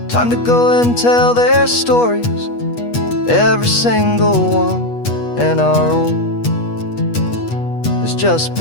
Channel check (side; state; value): right; late; 8.3 ms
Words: Time to go and tell their stories, every single one, and our own has just